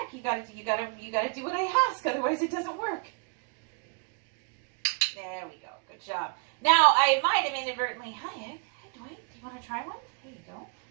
You gotta do what I ask, otherwise it doesn't work. There we go. Good job. Now I might have inadvertently. Hi, Egg. Hey, Dwight. Do you want to try one? There you go.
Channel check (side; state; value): left; quieter; 35.4 dB